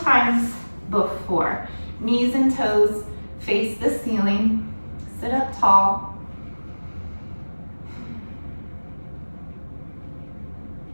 before. Knees and toes face the ceiling. Sit up tall.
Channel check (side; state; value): both; inverted; correlation -1.00